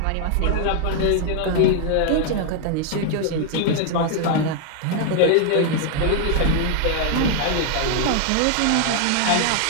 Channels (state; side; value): different; both; correlation 0.00